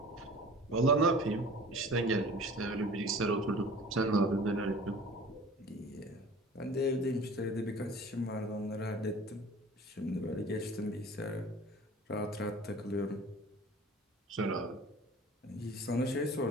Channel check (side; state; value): both; normal; correlation 0.43